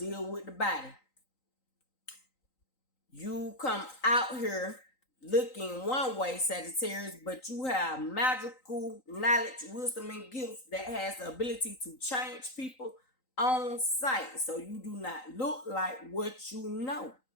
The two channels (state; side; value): late; right; 3.9 ms